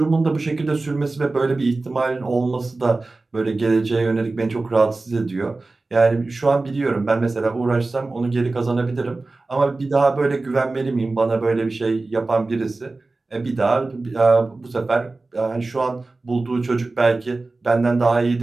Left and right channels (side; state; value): left; quieter; 3.4 dB